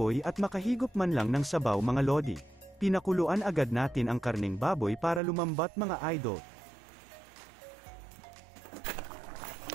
at makahigop man lang ng sabaw mga lodi. Pinakuluan agad natin ang karning baboy para lumambat mga idol.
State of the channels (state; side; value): drops out; left; at 5.2 s